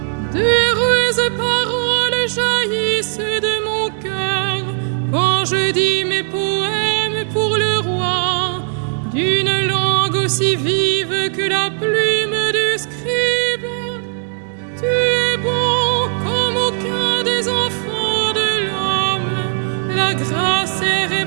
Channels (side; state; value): left; silent; 68 dB below the other